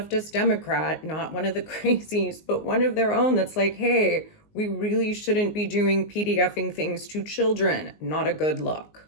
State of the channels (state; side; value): late; right; 19 ms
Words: Democrat, not one of the crazies, but one of their own that's like, hey, we really shouldn't be doing PDFing things to children. Not a good